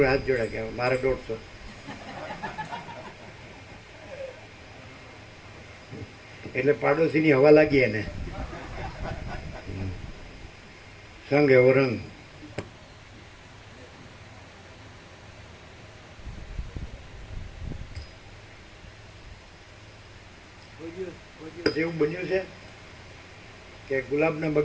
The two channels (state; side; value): identical; both; correlation 1.00